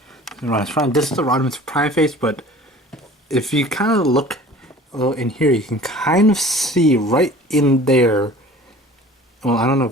is Rodimus Prime. This is the Rodimus Prime face, but if you kind of look a little in here, you can kind of see right in there. Well, I don't know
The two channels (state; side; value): normal; both; correlation 0.45